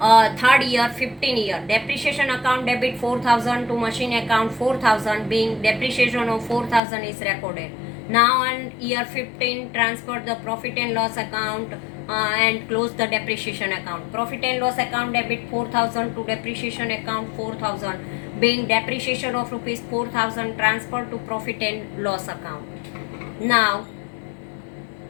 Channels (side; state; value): right; drops out; at 6.8 s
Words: year 15 year, depreciation account debit 4,000 to machine account 4,000, being depreciation of 4,000 is recorded. Now on year 15, transfer the profit and loss account and close the depreciation account. Profit and loss account debit 4,000 to depreciation account 4,000, being depreciation of rupees 4,000 transferred to profit and loss account. Now